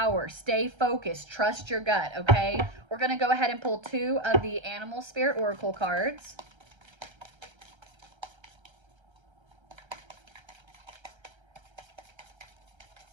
Stay focused. Trust your gut, okay? We're going to go ahead and pull 2 of the Animal Spirit Oracle cards.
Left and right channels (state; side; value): late; left; 1.3 ms